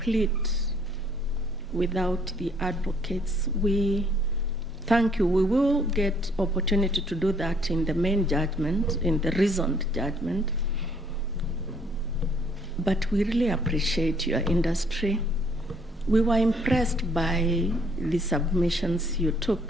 without the advocates. We thank you. We will get opportunity to do that in the main judgment, in the reasoned judgment. But we really appreciate your industry. We were impressed by the submissions you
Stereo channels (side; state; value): both; normal; correlation 0.63